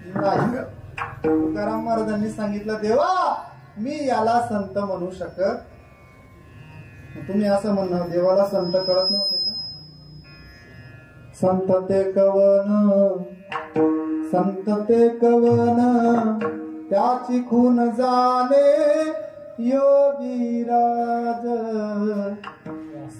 नाही. तुकाराम महाराजांनी सांगितलं, देवा मी याला संत म्हणू शकत. तुम्ही असं म्हणणार देवाला संत कळत नव्हतं का? संत ते कवन, संत ते कवन, त्याची खून जाणे योगीराज.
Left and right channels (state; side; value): identical; both; correlation 1.00